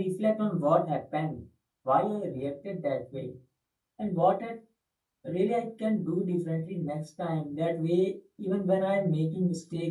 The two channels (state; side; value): identical; both; correlation 1.00